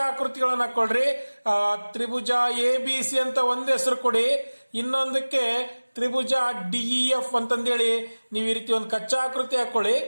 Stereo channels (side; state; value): both; inverted; correlation -1.00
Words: ಆಕೃತಿಗಳನ್ನ ಹಾಕೊಳ್ರಿ. ತ್ರಿಭುಜ ಎ ಬಿ ಸಿ ಅಂತ ಒಂದು ಹೆಸರು ಕೊಡಿ, ಇನ್ನೊಂದಕ್ಕೆ ತ್ರಿಭುಜ ಡಿಇಎಫ್ ಅಂತಂದೇಳಿ ನೀವು ಈ ರೀತಿ ಒಂದು ಕಚ್ಚಾ ಆಕೃತಿ ಹಾಕೊಳ್ಳಿ.